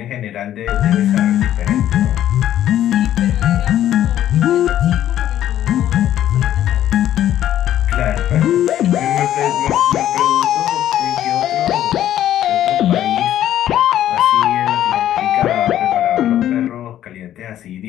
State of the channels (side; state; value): right; quieter; 11.8 dB